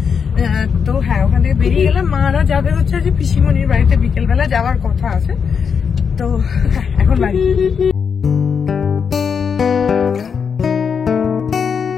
তো হ্যাঁ, ওখান থেকে বেরিয়ে গেলাম। মারা যাবে হচ্ছে যে পিসিমণির বাড়িতে, বিকেলবেলা যাওয়ার কথা আছে। তো হ্যাঁ, এখন বাড়ি।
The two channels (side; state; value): right; quieter; 6.5 dB